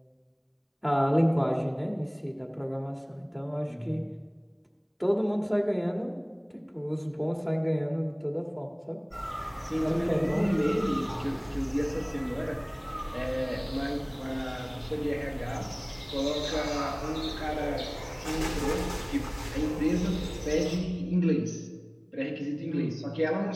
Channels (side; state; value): both; identical; correlation 1.00